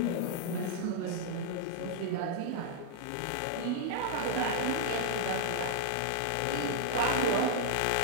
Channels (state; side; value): different; both; correlation -0.01